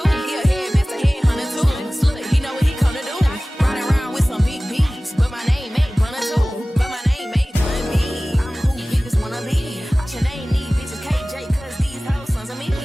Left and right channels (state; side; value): normal; both; correlation 0.98